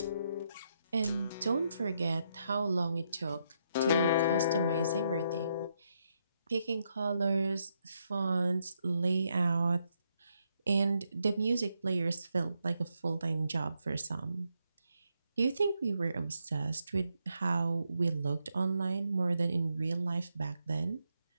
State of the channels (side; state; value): both; inverted; correlation -0.79